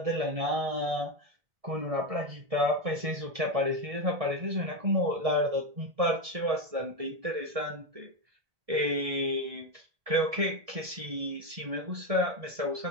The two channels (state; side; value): late; left; 1.6 ms